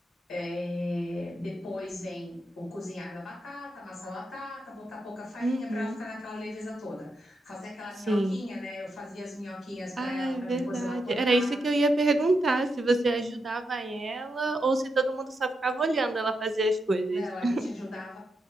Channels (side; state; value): both; normal; correlation 0.84